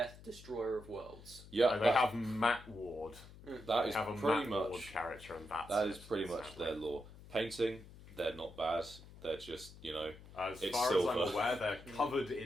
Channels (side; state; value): left; noise; hum, 18 dB below the sound